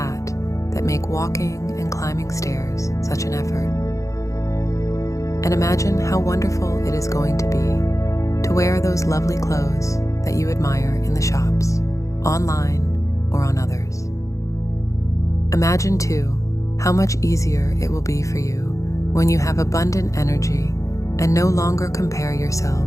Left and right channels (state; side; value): late; right; 0.15 ms